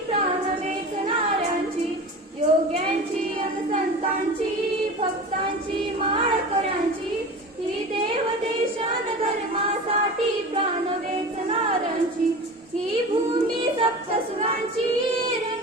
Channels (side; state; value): both; normal; correlation 0.33